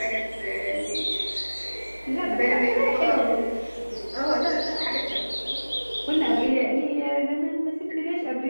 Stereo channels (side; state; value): both; inverted; correlation -1.00